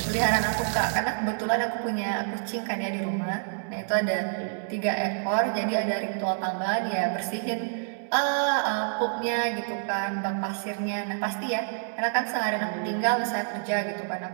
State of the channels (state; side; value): silent; left; 60 dB below the other